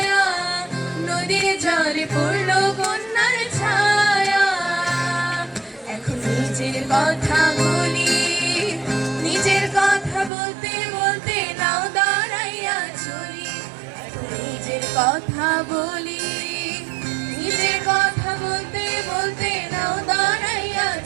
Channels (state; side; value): drops out; left; at 10.3 s